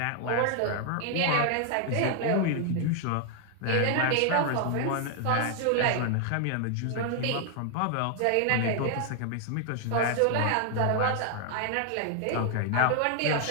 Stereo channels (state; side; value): different; both; correlation 0.00